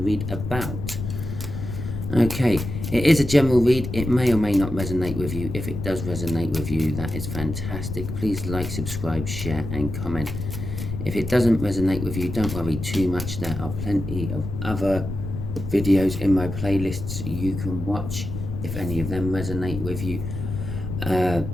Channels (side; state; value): left; noise; rumble, 6 dB below the sound